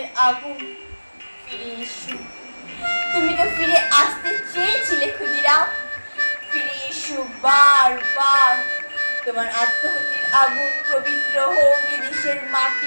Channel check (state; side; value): inverted; both; correlation -1.00